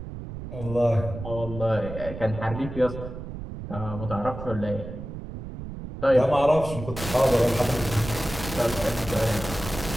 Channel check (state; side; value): noise; right; rumble, 10 dB below the sound